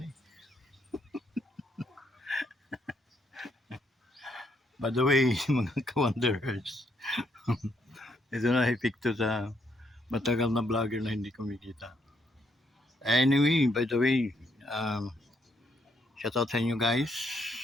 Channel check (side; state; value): both; normal; correlation 0.73